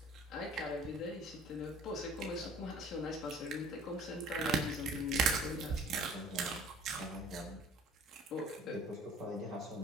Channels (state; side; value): normal; both; correlation 0.50